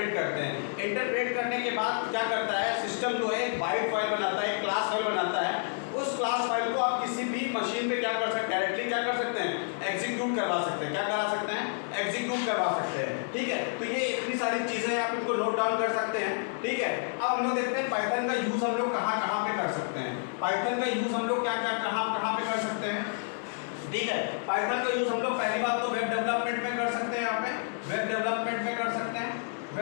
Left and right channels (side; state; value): right; silent; 58 dB below the other